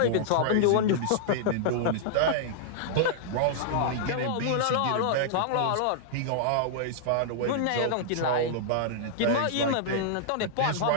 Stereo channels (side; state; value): both; different; correlation -0.02